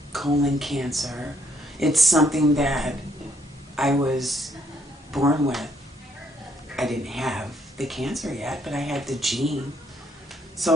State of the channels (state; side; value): normal; both; correlation 0.70